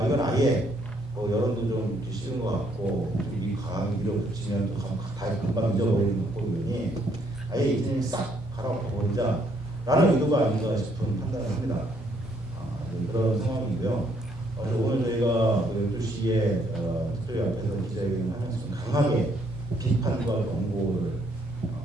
이건 아예 여론도 좀 싫은 것 같고 이 강한 밀어붙이면 다 금방 잊어버리는 것 보니 아예 이제는 싹 갈아엎어버리자라는 의도가 아닌가 싶은 판단을 합니다. 그런 상황이고요. 오늘 저희가 12시에 특별히 앞에서 기자회견을 하면서 강하게 비판과 경고를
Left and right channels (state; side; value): normal; both; correlation 0.69